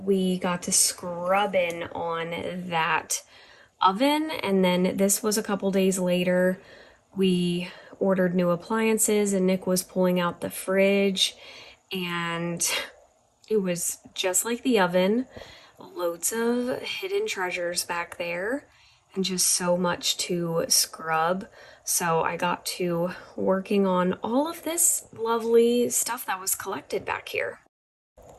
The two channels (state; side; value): identical; both; correlation 1.00